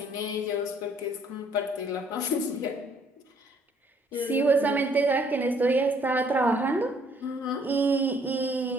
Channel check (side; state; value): both; normal; correlation 0.64